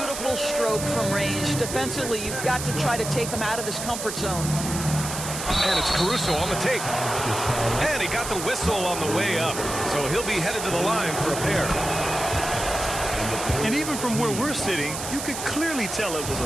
stroke from range. Defensively, you've got to try to take him out of his comfort zone. And it's Caruso on the take. And he got the whistle on the way up. So he'll be headed to the line for a pair. And even from where we're sitting, you could clearly tell it was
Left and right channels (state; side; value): noise; right; hiss, 6 dB below the sound